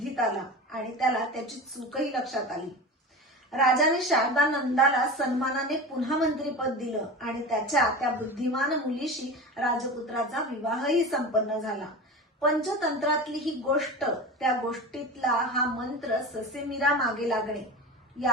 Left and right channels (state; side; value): normal; both; correlation 0.30